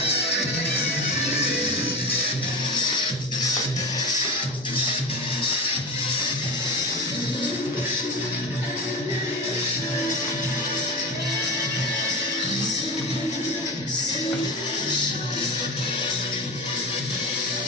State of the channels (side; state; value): both; normal; correlation 0.26